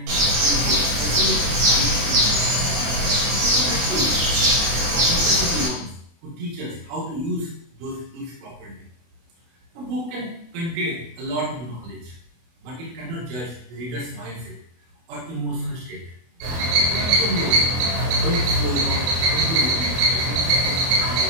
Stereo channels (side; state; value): left; late; 24 ms